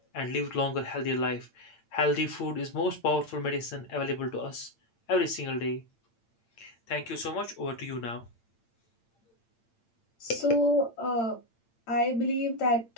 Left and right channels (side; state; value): right; late; 8.8 ms